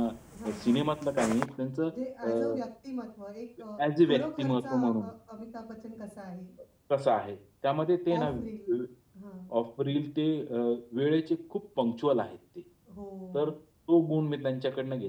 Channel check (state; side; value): identical; both; correlation 1.00